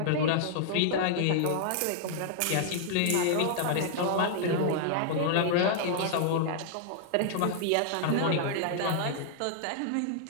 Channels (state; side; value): different; both; correlation -0.01